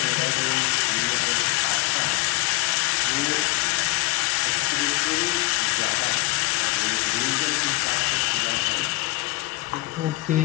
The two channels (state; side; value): quieter; right; 21.8 dB